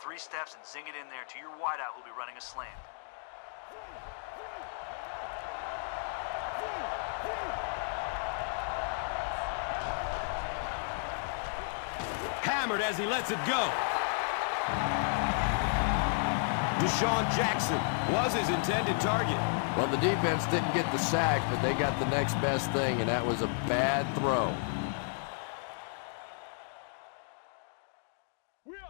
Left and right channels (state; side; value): silent; right; digital silence